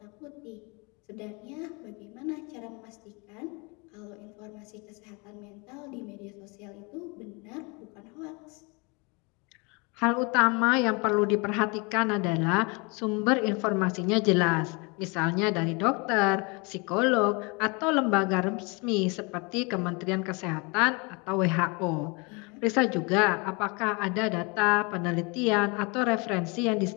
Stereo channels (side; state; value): right; quieter; 29.8 dB